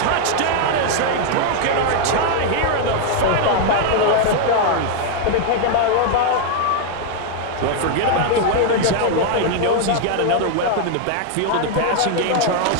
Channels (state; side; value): different; both; correlation 0.00